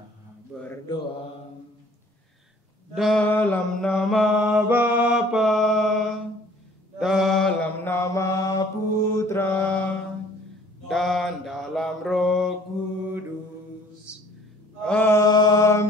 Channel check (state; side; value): normal; both; correlation 0.54